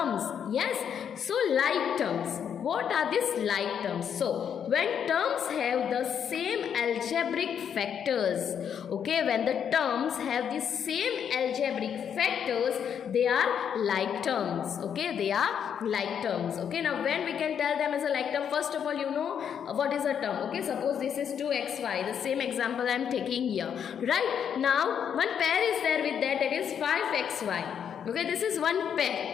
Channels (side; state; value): right; quieter; 8.2 dB